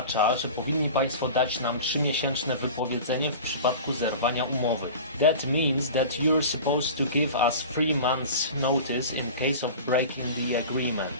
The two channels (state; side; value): inverted; both; correlation -0.36